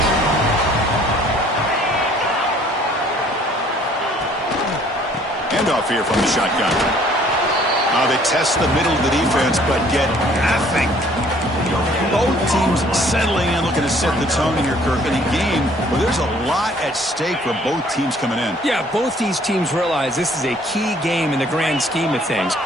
Handoff here from the shotgun. They test the middle of the defense, but get nothing. Both teams settling in, looking to set the tone in here, Kirk, in a game where there's a lot at stake for both teams coming in. Yeah, both these teams realize this is a key game in the grand scheme of things.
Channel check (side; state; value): both; normal; correlation 0.58